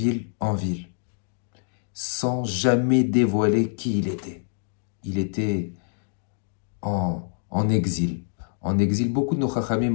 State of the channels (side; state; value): right; silent; digital silence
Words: en ville, sans jamais dévoiler qui il était. Il était en exil. En exil, beaucoup de nos